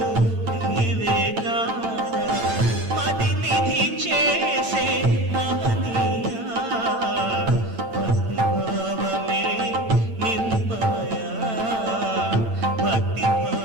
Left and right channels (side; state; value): left; late; 8.9 ms